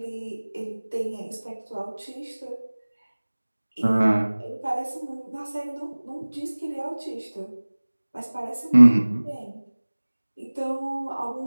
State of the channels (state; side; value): inverted; both; correlation -1.00